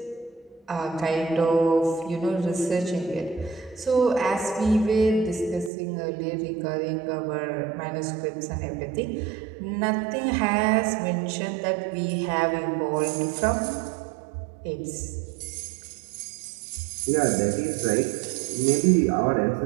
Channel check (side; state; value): left; drops out; at 5.7 s